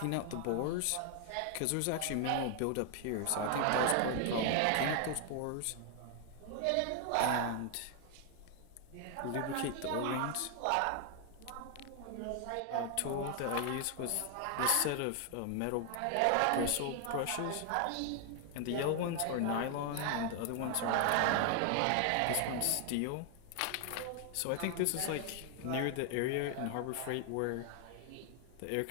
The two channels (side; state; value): both; different; correlation 0.00